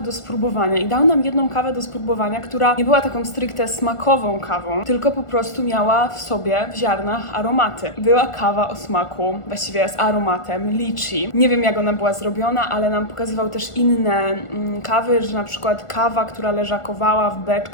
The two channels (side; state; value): right; late; 1.4 ms